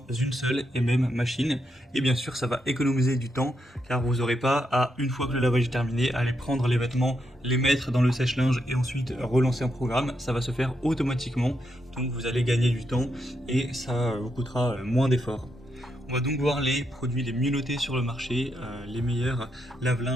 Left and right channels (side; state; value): both; normal; correlation 0.81